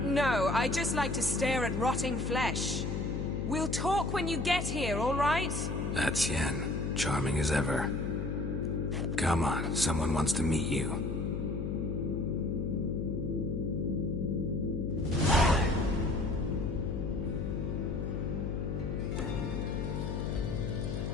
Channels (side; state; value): left; noise; hum, 1 dB below the sound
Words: No, I just like to stare at rotting flesh. We'll talk when you get here, all right? That's Yen. Charming as ever. Come on, someone wants to meet you.